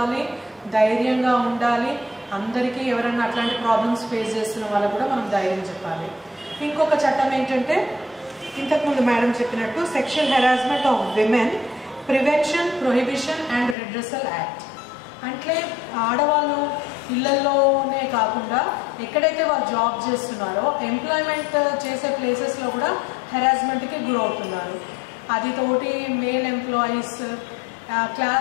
ధైర్యంగా ఉండాలి. అందరికీ ఎవరైనా అట్లాంటి ప్రాబ్లమ్స్ ఫేస్ చేస్తున్న వాళ్ళకు కూడా మనం ధైర్యం చెప్పాలి. ఇంకొక చట్టం ఏంటంటే, ఇంతకుముందు మేడం చెప్పినట్టు sexual harassment of women prevention, prohibition and redressal act. అంటే ఆడవాళ్ళు ఇళ్లలోనే కాకుండా ఎక్కడైతే వాళ్ళు జాబ్ చేస్తున్నారో ఎంప్లాయ్మెంట్ చేసే ప్లేసెస్లో కూడా హెరాస్మెంట్కి గురవుతున్నారు. అది తోటి మేల్ ఎంప్లాయీస్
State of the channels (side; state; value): right; drops out; at 13.8 s